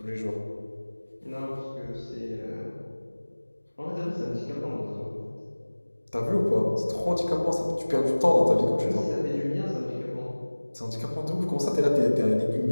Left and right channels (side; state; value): both; inverted; correlation -1.00